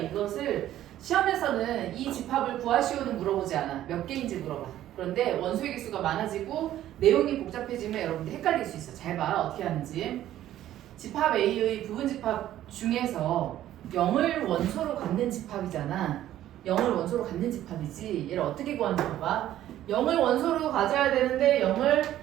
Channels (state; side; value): quieter; left; 12.8 dB